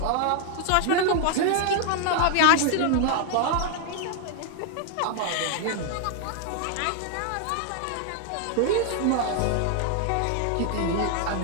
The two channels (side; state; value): both; different; correlation 0.00